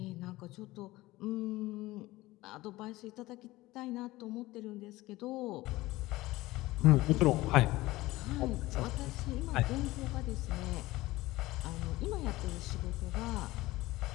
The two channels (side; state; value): right; quieter; 18.7 dB